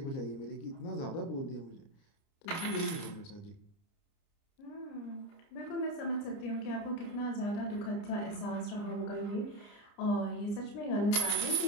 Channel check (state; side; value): late; right; 30 ms